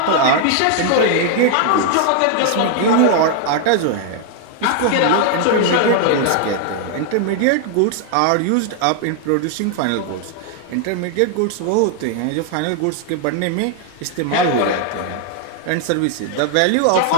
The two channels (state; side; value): different; both; correlation 0.00